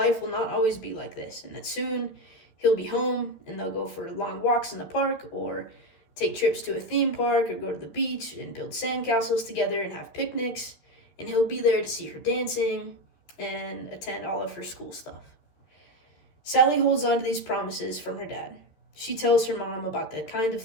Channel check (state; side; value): late; right; 13 ms